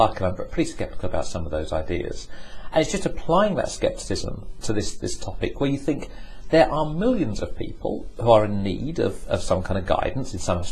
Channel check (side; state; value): both; identical; correlation 1.00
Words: and I'm pretty sceptical about some of those ideas. And it's just applying that skepticism to this topic, where you think there are millions of people who are in need of some kind of guidance in some